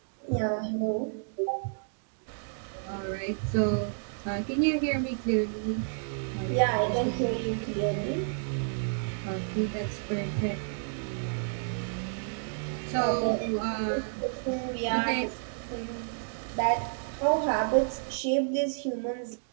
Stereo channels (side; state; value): left; silent; digital silence